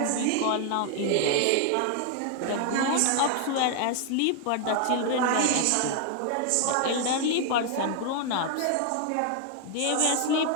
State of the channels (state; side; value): different; both; correlation 0.00